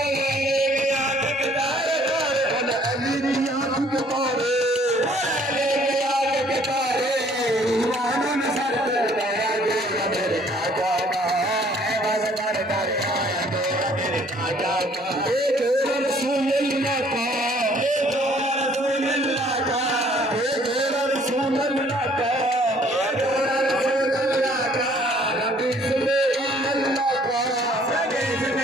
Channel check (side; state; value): both; normal; correlation 0.60